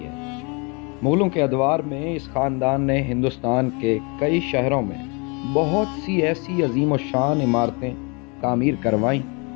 ہے۔ مغلوں کے ادوار میں اس خاندان نے ہندوستان کے کئی شہروں میں بہت سی ایسی عظیم و شان عمارتیں تعمیر کروائیں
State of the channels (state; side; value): quieter; right; 31.9 dB